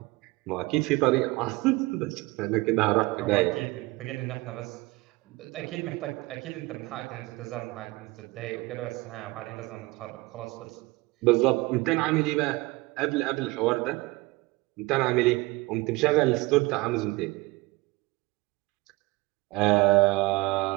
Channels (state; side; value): quieter; left; 22.5 dB